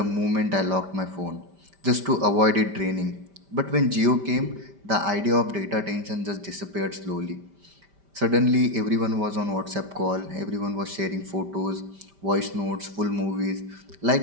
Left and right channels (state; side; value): late; left; 5.1 ms